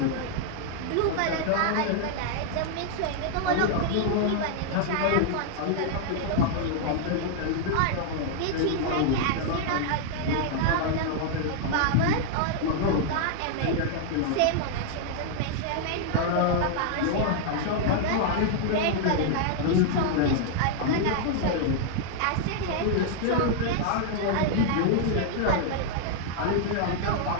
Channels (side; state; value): both; different; correlation -0.01